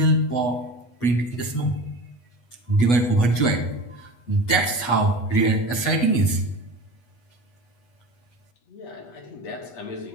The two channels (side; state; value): right; late; 8.3 ms